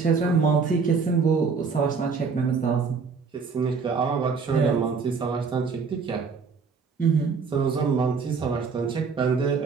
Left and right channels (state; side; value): quieter; left; 5.3 dB